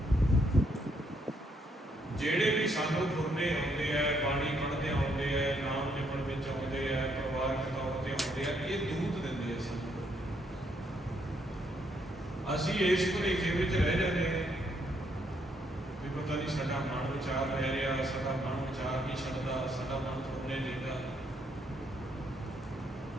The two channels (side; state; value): both; normal; correlation 0.73